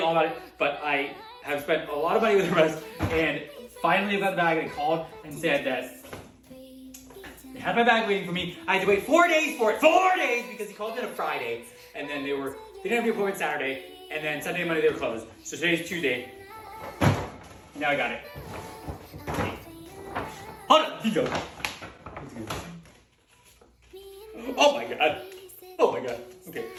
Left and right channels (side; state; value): both; identical; correlation 1.00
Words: all about it. But I have spent a lot of money with Hermès, and finally I got the bag. They called and said that they had my bag waiting for me. I had to wait 4 days for it. 4 days, because he called it a Friday, and then they didn't have the appointment Saturday, and then Sunday and Monday they were closed. So today's Tuesday. Now I got it. Hold on, he goes. Oh my god. Oh my god. Okay,